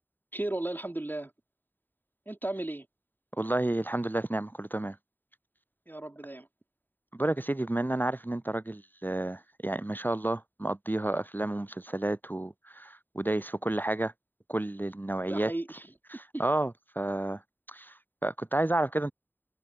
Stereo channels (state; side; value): late; right; 0.092 ms